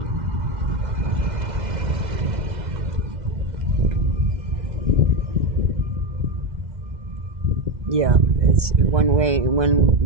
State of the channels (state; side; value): late; left; 2.0 ms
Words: Yeah, it's one way,